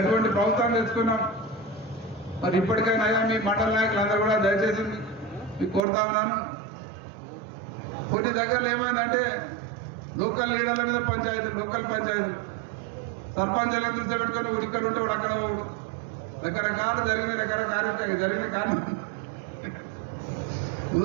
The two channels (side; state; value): left; drops out; at 5.8 s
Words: ప్రభుత్వాన్ని తెచ్చుకున్నాం. మరి ఇప్పటికైనా అయ్యా మీ మండల నాయకులందరూ కూడా దయచేసి మీకు కోరుతా ఉన్నాను. కొన్ని దగ్గరలో ఏమైందంటే లోకల్ లీడర్ల మీద పంచాయతీ, లోకల్ పంచాయతీ సర్పంచులను కూర్చోబెట్టుకొని ఇక్కడ ఉంటే వాడు అక్కడ రకరకాల జరిగిన కారణం.